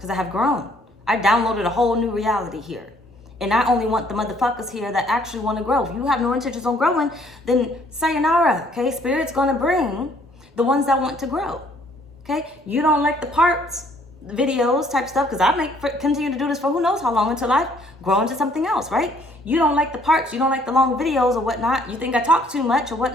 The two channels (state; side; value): normal; both; correlation 0.62